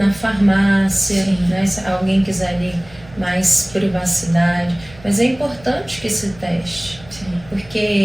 farmácia, né? Se alguém quiser ali mais privacidade. Mas é importante que se teste. Sim.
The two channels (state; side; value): noise; right; rumble, 22 dB below the sound